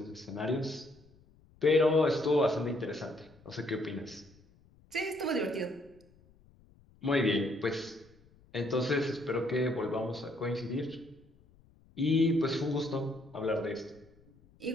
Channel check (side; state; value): left; noise; rumble, 28 dB below the sound